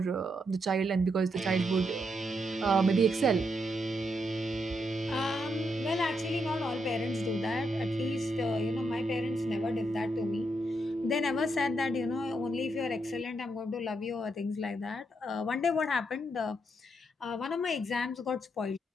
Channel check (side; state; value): both; normal; correlation 0.80